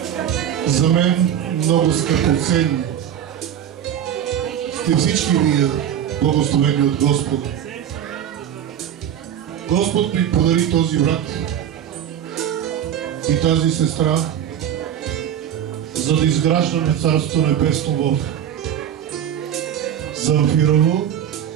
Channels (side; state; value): left; quieter; 9.8 dB